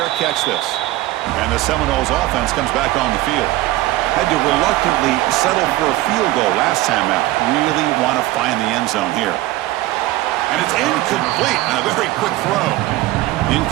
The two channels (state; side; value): quieter; left; 17.2 dB